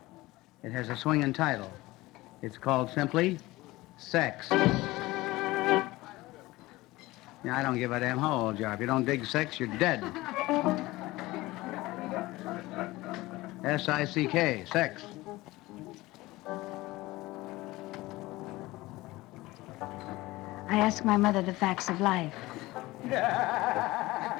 It has a swinging title. It's called simply Sex. Yeah, I don't give a damn how old you are. If you don't dig sex, you're dead. S-I-C-K, sex. I ask my mother the facts of life.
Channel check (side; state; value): right; quieter; 19.4 dB